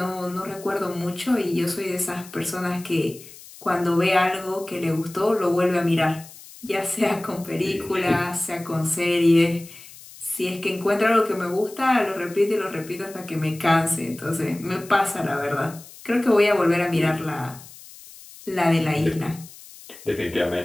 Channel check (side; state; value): left; noise; hiss, 19 dB below the sound